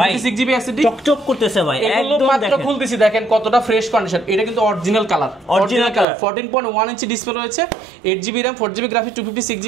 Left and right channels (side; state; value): left; drops out; at 6.1 s